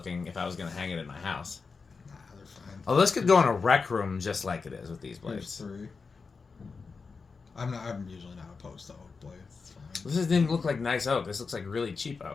if I was going to hang it in my house. Nah, they're fine. Oh, this could go in a rec room just like it is with these blades. Here's 3. I'm usually not opposed to oak blades. It's fine. This doesn't even look like nice oak. This looks like really cheap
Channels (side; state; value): right; quieter; 4.8 dB